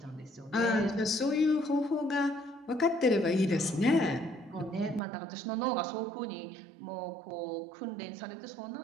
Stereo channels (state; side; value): drops out; left; at 5.0 s